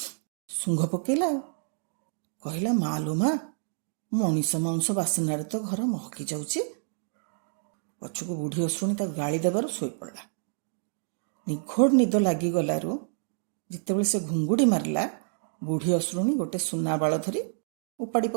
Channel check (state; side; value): silent; left; digital silence